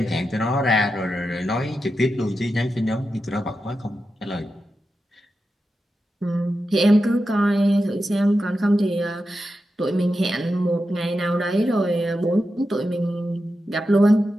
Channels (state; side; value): normal; both; correlation 0.89